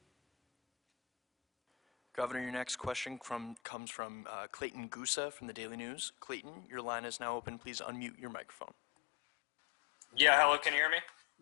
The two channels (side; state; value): right; drops out; at 3.6 s